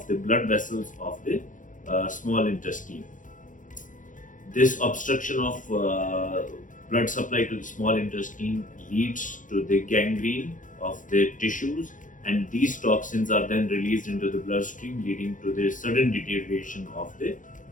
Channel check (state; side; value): late; right; 0.38 ms